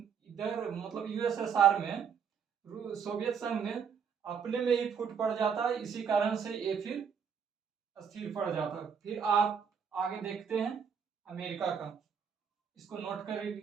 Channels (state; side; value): quieter; left; 6.9 dB